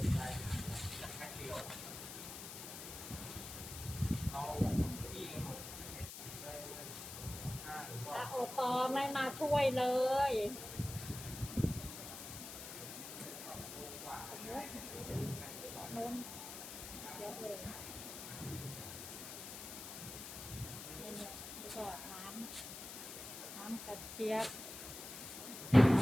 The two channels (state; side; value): noise; left; hiss, 9 dB below the sound